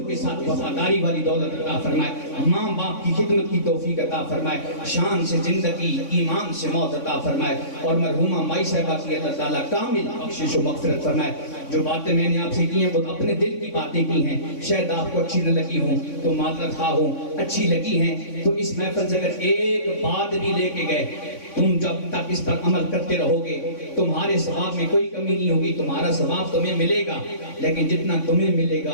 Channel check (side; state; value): right; late; 3.6 ms